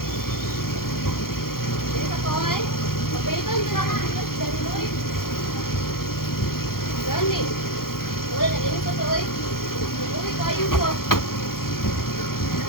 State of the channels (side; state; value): right; late; 0.92 ms